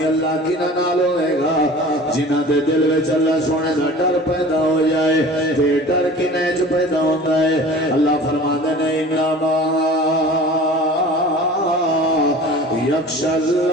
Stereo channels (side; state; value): both; normal; correlation 0.41